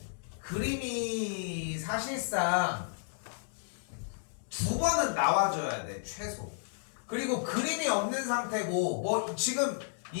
그림이 사실상 2번은 나와줘야 돼 최소. 그리고 그림이 없는 상태고 뭐 지금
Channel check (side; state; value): right; silent; 56 dB below the other